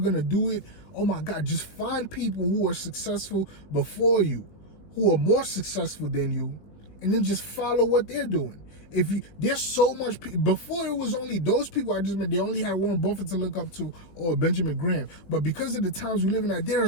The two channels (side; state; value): right; late; 20 ms